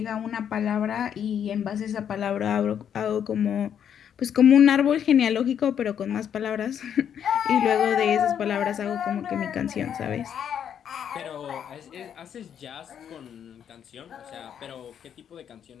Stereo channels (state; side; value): quieter; right; 8.8 dB